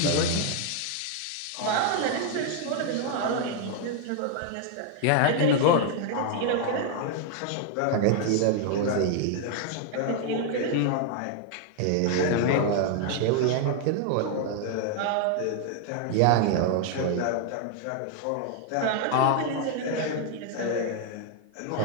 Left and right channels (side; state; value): both; different; correlation 0.00